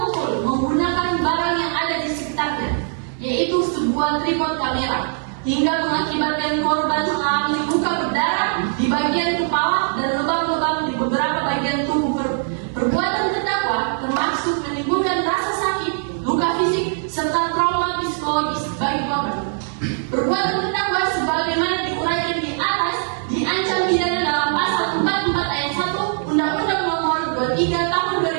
menggunakan barang yang ada di sekitarnya, yaitu sebuah tripod kamera, hingga mengakibatkan korban mengalami luka berdarah di bagian kepala dan lubang-lubang di beberapa bagian tubuh. Perbuatan terdakwa termasuk menimbulkan rasa sakit, luka fisik, serta trauma psikologis bagi korban. Perbuatan terdakwa sebagaimana diuraikan di atas diancam pidana dalam pasal 44 ayat 1 Undang-Undang Nomor 23 Tahun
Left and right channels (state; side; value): silent; left; 65 dB below the other